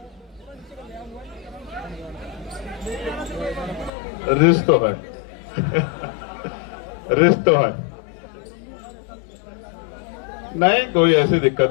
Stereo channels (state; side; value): drops out; right; at 3.9 s